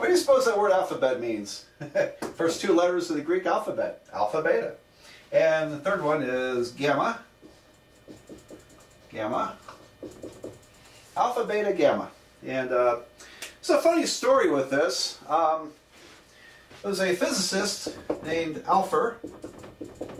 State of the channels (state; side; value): identical; both; correlation 1.00